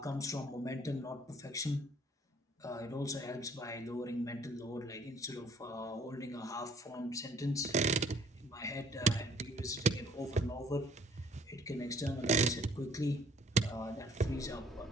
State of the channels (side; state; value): both; normal; correlation 0.56